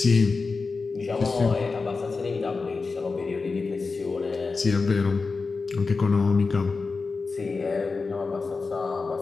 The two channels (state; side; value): quieter; right; 4.3 dB